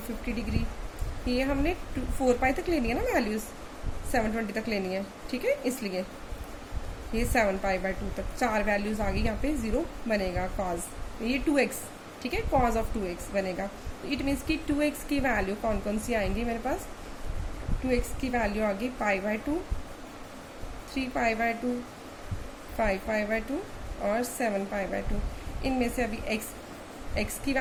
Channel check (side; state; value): both; identical; correlation 1.00